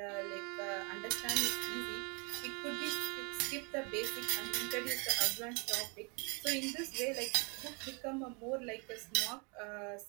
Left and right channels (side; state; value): left; quieter; 32.9 dB